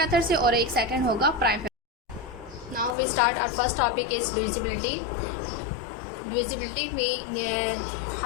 से और एक सेकेंड होगा prime. Now we start our first topic is divisibility. Divisibility में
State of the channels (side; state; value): right; drops out; at 3.0 s